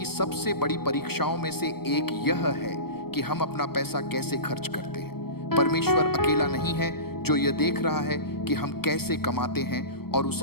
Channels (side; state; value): right; late; 0.95 ms